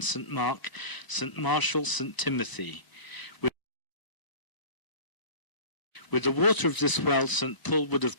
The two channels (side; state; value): right; late; 1.0 ms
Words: St. Mark, St. Marshall, St. Timothy. With the water of this well, St. Paul would have